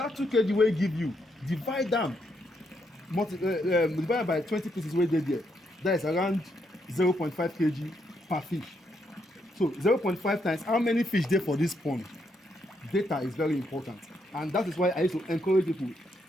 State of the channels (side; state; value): both; normal; correlation 0.77